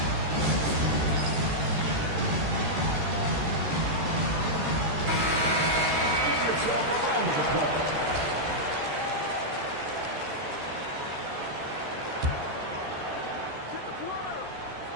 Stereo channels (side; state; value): left; late; 13 ms